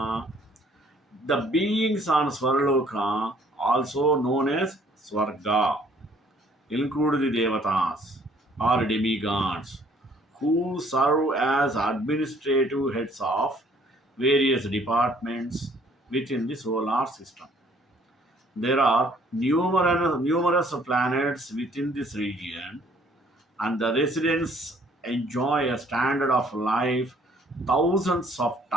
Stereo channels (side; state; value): both; normal; correlation 0.61